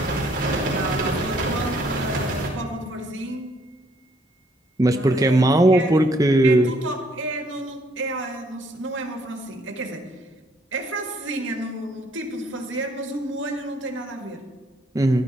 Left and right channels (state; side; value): normal; both; correlation 0.67